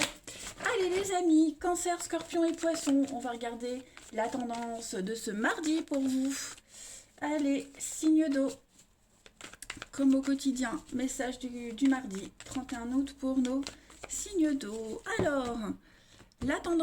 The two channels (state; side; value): identical; both; correlation 1.00